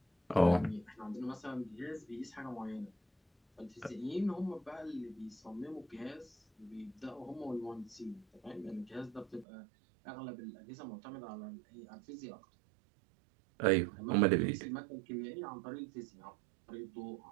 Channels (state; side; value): drops out; left; at 9.5 s